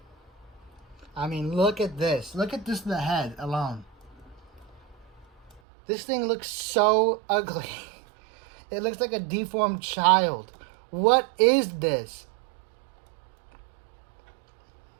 I mean, look at this. Look at this, the head alone. This thing looks so ugly. It looks like a deformed child. What is this?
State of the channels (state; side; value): drops out; left; at 5.6 s